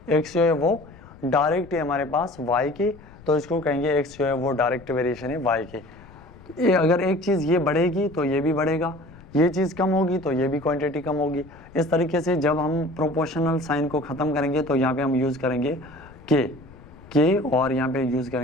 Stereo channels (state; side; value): noise; left; rumble, 21 dB below the sound